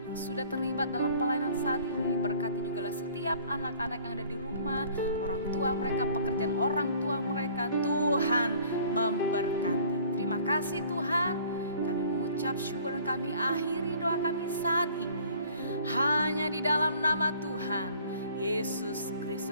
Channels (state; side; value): inverted; both; correlation -0.53